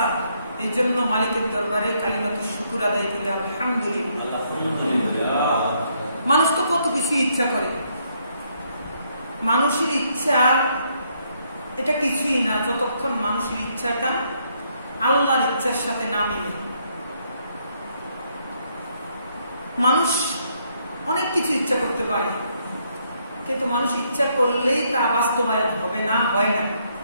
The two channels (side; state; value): both; inverted; correlation -0.72